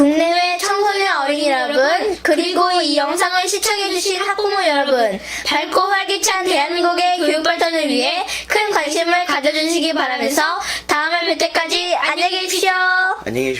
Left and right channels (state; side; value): identical; both; correlation 1.00